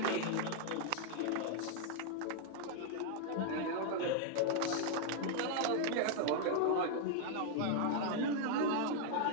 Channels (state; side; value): different; both; correlation 0.00